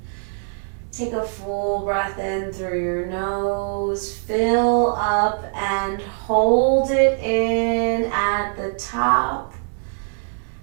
Take a full breath in through your nose. Fill up and hold it in at the top.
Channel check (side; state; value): left; silent; 64 dB below the other